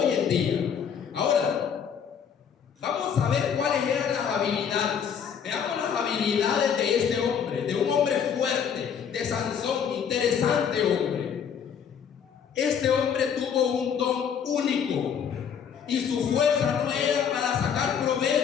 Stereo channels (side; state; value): right; quieter; 7.6 dB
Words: en día. Ahora, vamos a ver cuáles eran las habilidades. Veamos las habilidades de este hombre, de un hombre fuerte, de Sansón, interesante hombre. Este hombre tuvo un don único y su fuerza no era para sacar